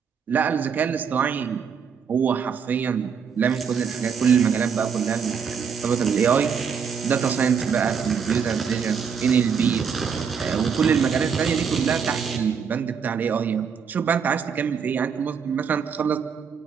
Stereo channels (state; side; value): quieter; left; 6.7 dB